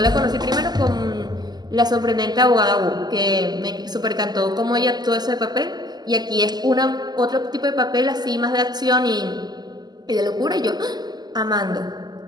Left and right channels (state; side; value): late; left; 0.20 ms